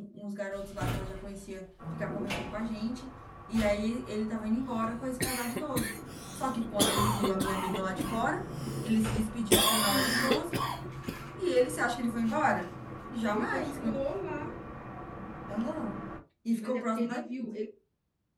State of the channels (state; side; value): identical; both; correlation 1.00